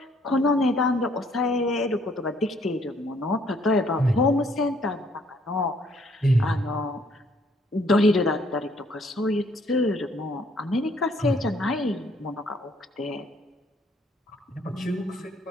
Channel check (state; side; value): normal; both; correlation 0.64